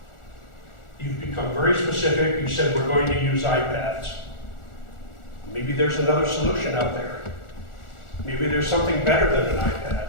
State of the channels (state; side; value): late; right; 1.4 ms